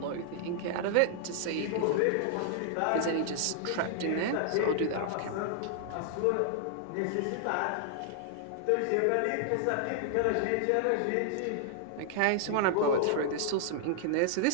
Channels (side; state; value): both; different; correlation -0.01